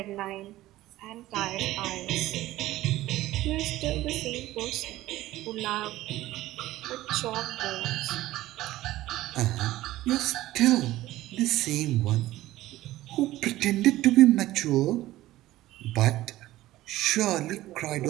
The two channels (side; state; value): left; quieter; 16.0 dB